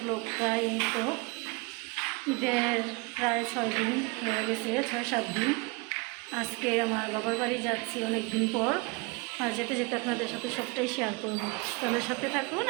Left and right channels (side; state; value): left; quieter; 28.2 dB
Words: ব্লগটা এই তো ঈদের প্রায় 6 দিন হয়ে গেছে, 6-7 দিন। আজকে আমার বাবার বাড়ি যাচ্ছি অনেক দিন পর, আর যেতে যেতে আপনাদের সাথে সবটাই শেয়ার করব। তাদের সাথে থাকুন